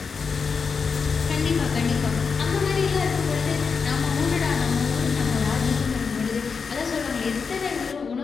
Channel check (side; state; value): right; quieter; 5.5 dB